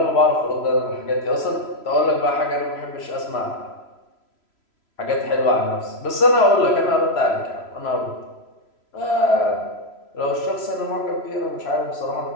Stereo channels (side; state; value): right; late; 3.0 ms